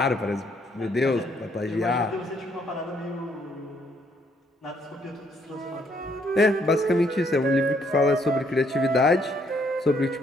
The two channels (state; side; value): normal; both; correlation 0.69